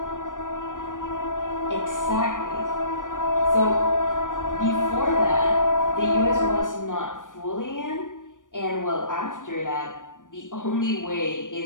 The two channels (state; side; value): late; right; 0.87 ms